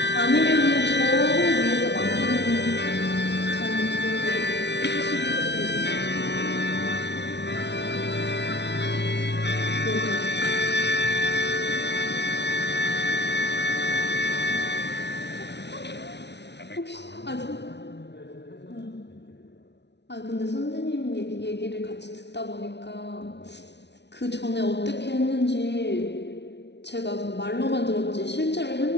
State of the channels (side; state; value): right; late; 0.50 ms